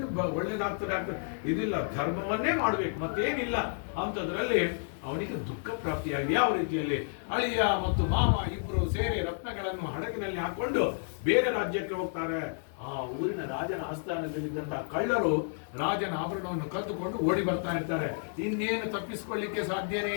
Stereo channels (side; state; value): right; silent; digital silence